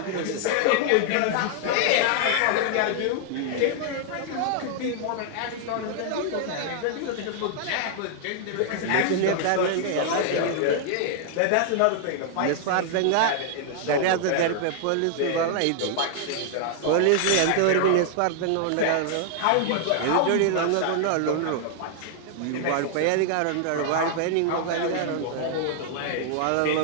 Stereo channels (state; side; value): different; both; correlation 0.00